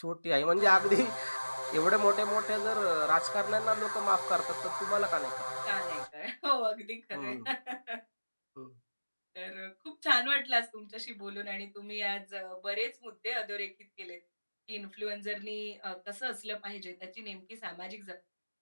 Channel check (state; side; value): inverted; both; correlation -1.00